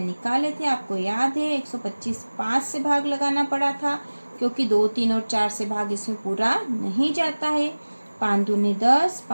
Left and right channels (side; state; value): both; inverted; correlation -1.00